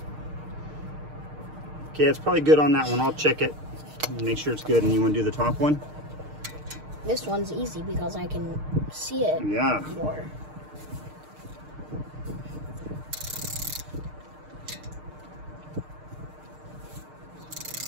Okay, it's probably good on that one. I'll check it and make sure it's good. And you want to do the top one? This one's easy because I can see it more.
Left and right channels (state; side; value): late; left; 6.5 ms